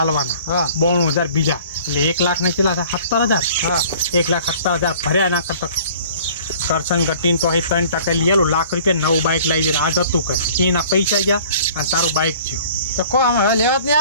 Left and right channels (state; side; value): inverted; both; correlation -0.49